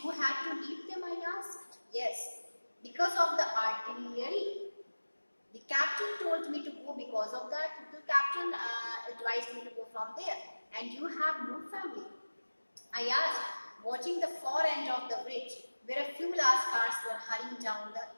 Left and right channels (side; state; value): both; inverted; correlation -1.00